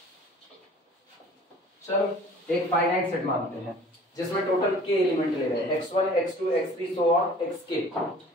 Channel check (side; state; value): both; normal; correlation 0.48